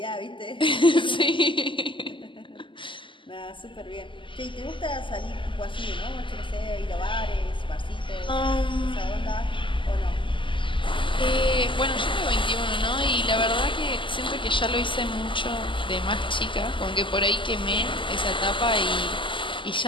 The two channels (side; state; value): right; late; 0.25 ms